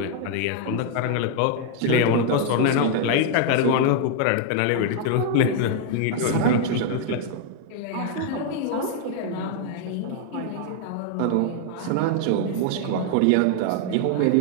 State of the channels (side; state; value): both; different; correlation 0.00